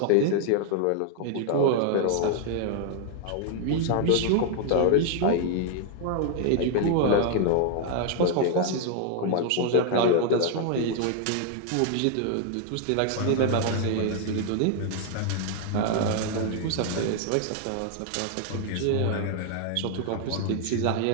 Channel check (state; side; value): different; both; correlation 0.00